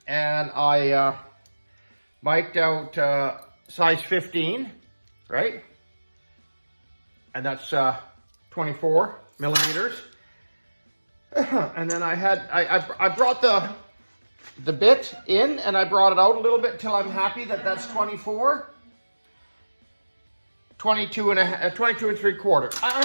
and I mic'd out size 15, right? And that's 24 millimeters. And then I brought the bit in and I brought it out a little bit until I'm happy that that's 24. 22 and 3/4.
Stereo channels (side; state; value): both; inverted; correlation -1.00